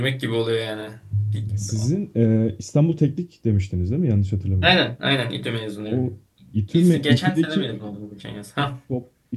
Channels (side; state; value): both; identical; correlation 1.00